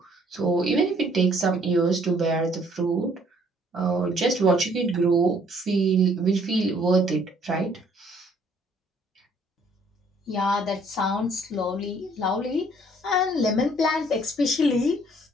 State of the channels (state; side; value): normal; both; correlation 0.62